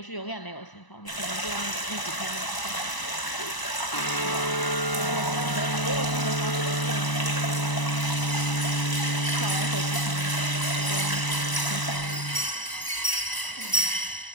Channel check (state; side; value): late; right; 1.0 ms